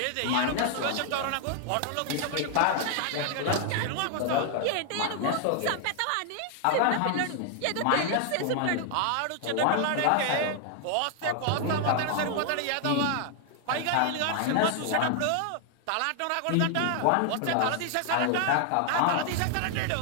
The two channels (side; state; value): both; different; correlation 0.00